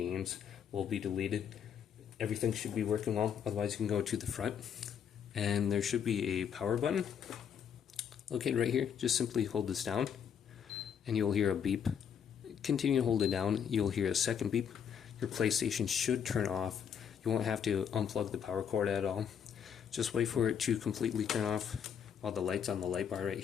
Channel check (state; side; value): quieter; right; 8.0 dB